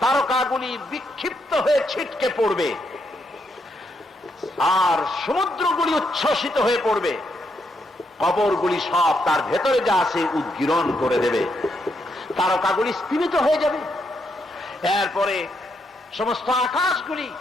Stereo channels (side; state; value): both; normal; correlation 0.79